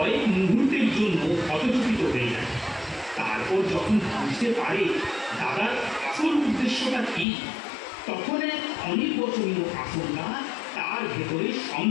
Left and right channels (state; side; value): drops out; right; at 7.2 s